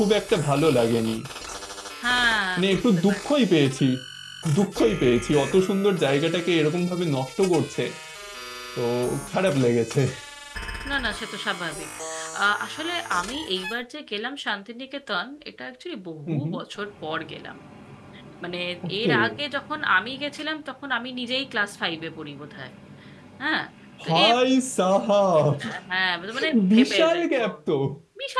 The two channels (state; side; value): identical; both; correlation 1.00